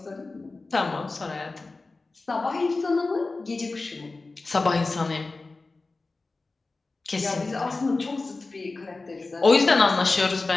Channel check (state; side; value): quieter; right; 3.5 dB